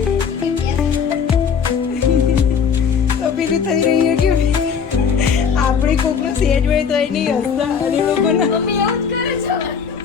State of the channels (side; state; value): right; quieter; 6.6 dB